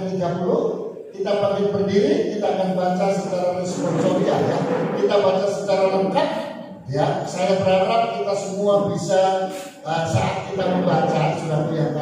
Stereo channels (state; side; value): identical; both; correlation 1.00